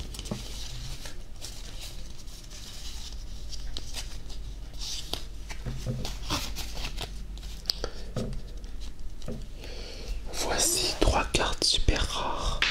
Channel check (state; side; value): identical; both; correlation 1.00